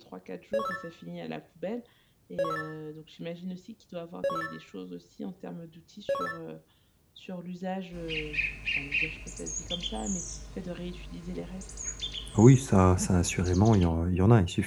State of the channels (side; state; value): both; identical; correlation 1.00